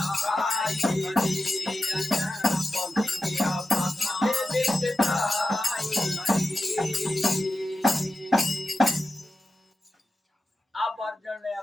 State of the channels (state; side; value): normal; both; correlation 0.92